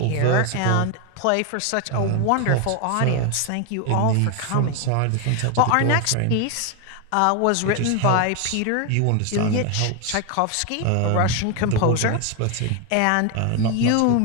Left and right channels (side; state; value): both; different; correlation 0.01